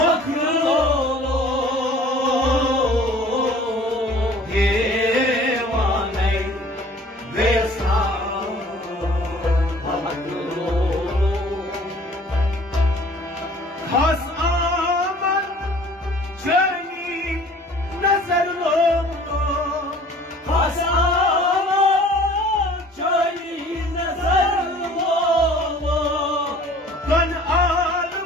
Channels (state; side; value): normal; both; correlation 0.50